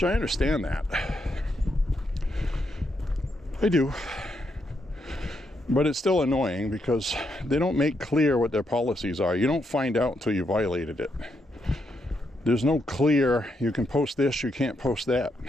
I understand that. I do. But it's still annoying because they don't make clear what their policies are. You don't find out until you violated it. There's no clear, you can post this, you can't post that.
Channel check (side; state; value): both; normal; correlation 0.80